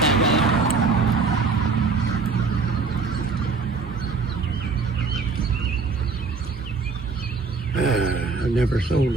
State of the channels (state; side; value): quieter; left; 4.5 dB